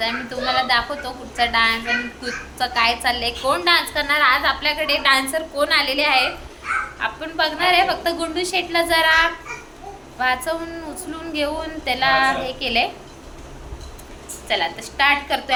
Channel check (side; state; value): both; identical; correlation 1.00